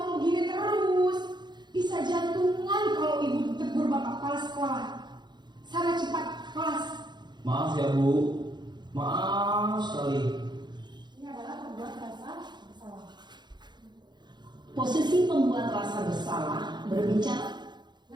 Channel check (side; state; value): left; late; 0.21 ms